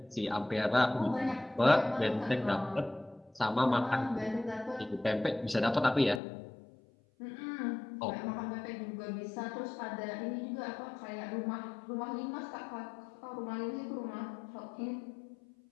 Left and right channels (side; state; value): right; drops out; at 6.2 s